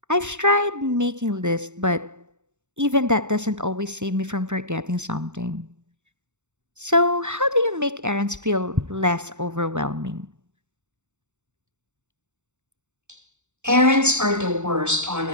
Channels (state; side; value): late; left; 0.84 ms